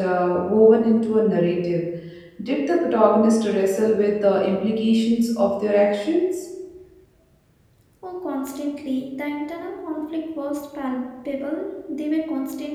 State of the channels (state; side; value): identical; both; correlation 1.00